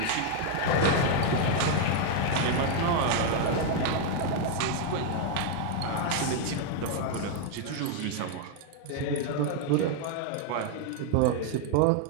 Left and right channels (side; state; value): both; different; correlation 0.00